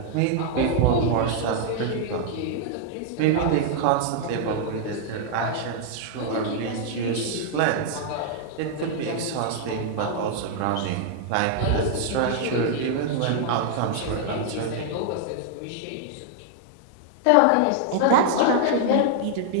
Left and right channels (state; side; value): different; both; correlation 0.00